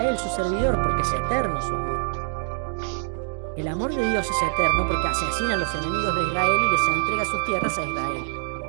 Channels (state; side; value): silent; left; digital silence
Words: su servidor, porque es eterno su amor. El amor de Dios es eterno porque asesina a los enemigos de Israel y les entrega sus tierras a Israel.